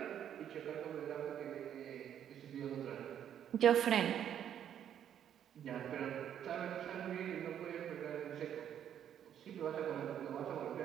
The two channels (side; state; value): left; quieter; 9.7 dB